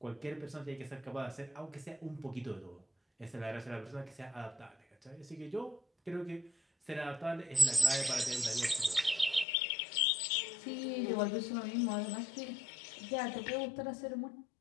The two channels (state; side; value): drops out; right; at 9.5 s